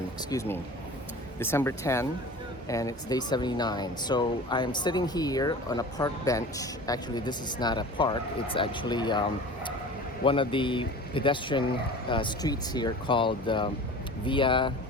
excuse me. December 10, and it's day 79. So I'm sitting here on a park bench. Actually, this is not a park. It's actually one of the pedestrian streets here called Via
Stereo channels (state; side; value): normal; both; correlation 0.38